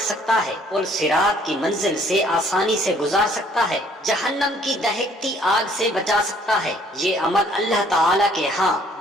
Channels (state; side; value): normal; both; correlation 0.61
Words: سکتا ہے، پل صراط کی منزل سے آسانی سے گزار سکتا ہے، جہنم کی دہکتی آگ سے بچا سکتا ہے۔ یہ عمل اللہ تعالیٰ کے ہاں